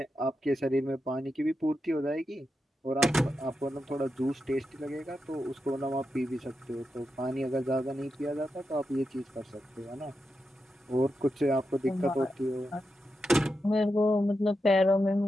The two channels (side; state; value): both; normal; correlation 0.87